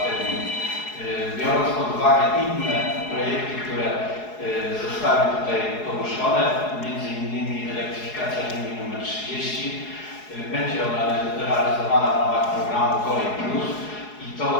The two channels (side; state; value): right; late; 4.7 ms